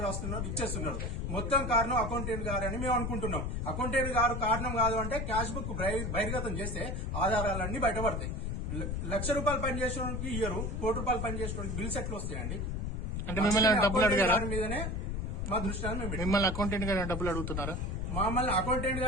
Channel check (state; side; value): noise; left; rumble, 2 dB below the sound